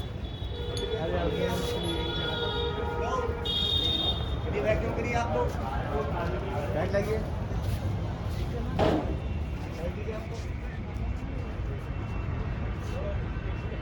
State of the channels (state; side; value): identical; both; correlation 1.00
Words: वैक्यूम करिए आप लोग, बैठ जाइए।